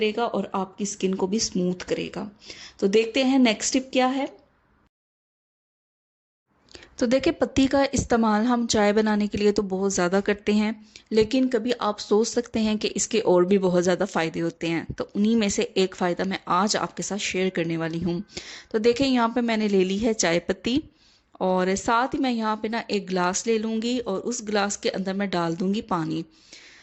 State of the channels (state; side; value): identical; both; correlation 1.00